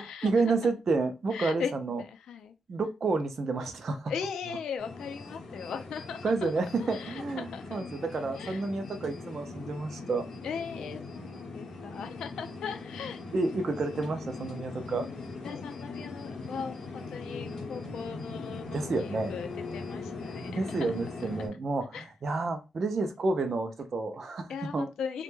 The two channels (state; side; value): normal; both; correlation 0.81